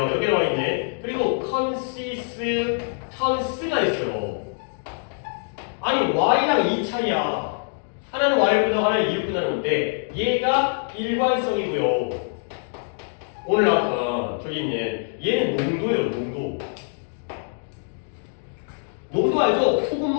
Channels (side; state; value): right; silent; 58 dB below the other